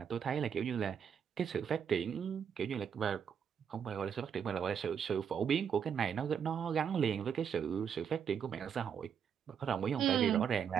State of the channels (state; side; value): quieter; left; 7.6 dB